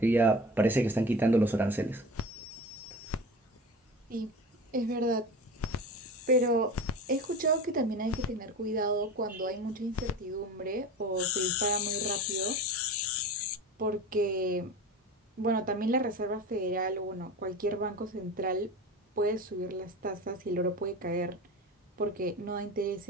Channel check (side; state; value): both; normal; correlation 0.32